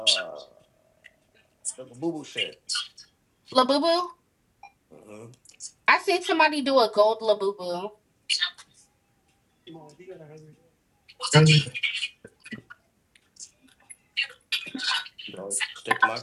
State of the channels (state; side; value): identical; both; correlation 1.00